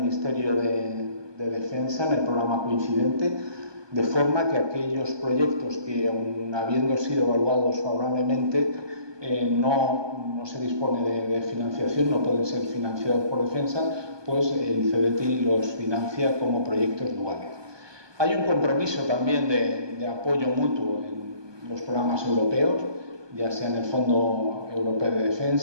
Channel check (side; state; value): left; late; 1.2 ms